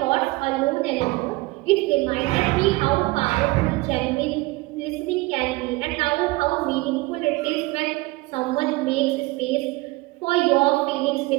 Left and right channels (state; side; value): quieter; left; 21.9 dB